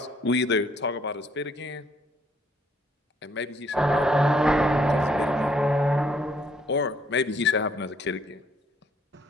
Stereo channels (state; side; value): normal; both; correlation 0.67